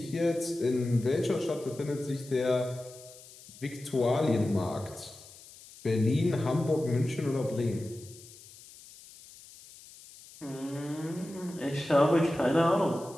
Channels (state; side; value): noise; left; hiss, 20 dB below the sound